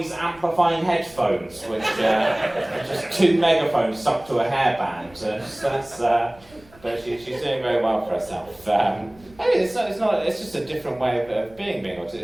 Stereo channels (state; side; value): noise; right; rumble, 26 dB below the sound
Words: amplifying headphones, which are just 2 megaphones stuck to a hairband. But she's doing very well for herself. It's just a different way of being autistic.